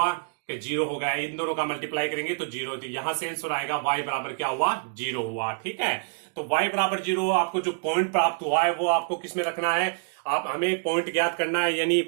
कि 0 हो गया। इन दोनों का मल्टीप्लाई करेंगे तो 0, तो यहां से आंसर आएगा y बराबर क्या हुआ, 0 हुआ, ठीक है। तो y बराबर 0, आपको जो पॉइंट प्राप्त हुआ है वो आपको किसमें रखना है, आप हमें पॉइंट ज्ञात करना है। यानी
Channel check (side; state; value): left; silent; digital silence